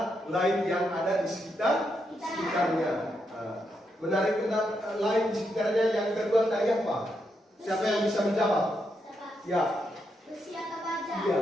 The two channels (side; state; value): both; normal; correlation 0.81